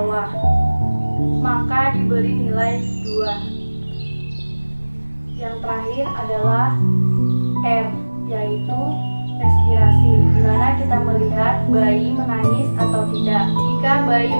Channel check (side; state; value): both; inverted; correlation -1.00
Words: maka diberi nilai 2. Yang terakhir adalah R, yaitu respirasi, di mana kita melihat bayi menangis atau tidak. Jika bayi